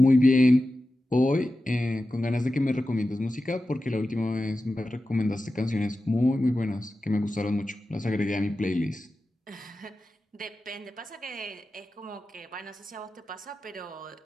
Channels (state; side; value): normal; both; correlation 0.93